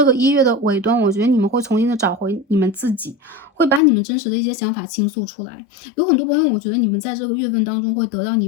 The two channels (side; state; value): right; drops out; at 3.8 s